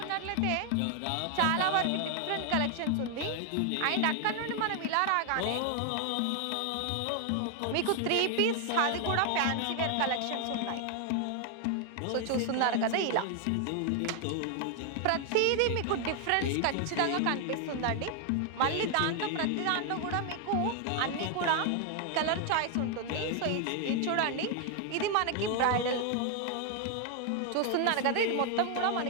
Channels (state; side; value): different; both; correlation 0.00